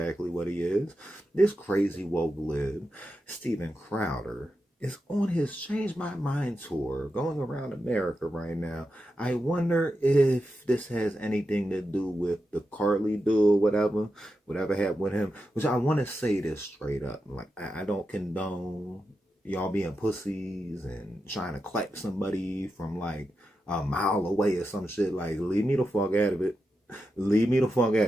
what he is. This crazy woke lib, Steven Crowder, is on his Change My Mind tour, going around America right now. I wonder if this has anything to do with the Carly dude, whatever happened with him, which I want to say this straight up. Like, I don't condone y'all being pussies and trying to clap somebody from like a mile away or some shit. Like, leave me the fuck out of it. Leave me the fuck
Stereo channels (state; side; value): normal; both; correlation 0.88